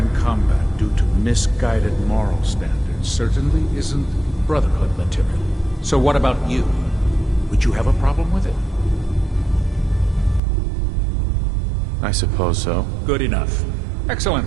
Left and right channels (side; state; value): left; drops out; at 10.4 s